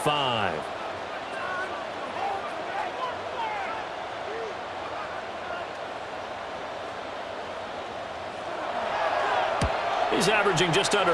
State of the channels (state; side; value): identical; both; correlation 1.00